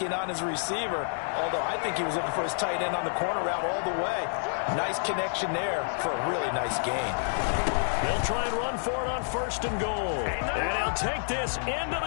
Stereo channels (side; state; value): right; silent; digital silence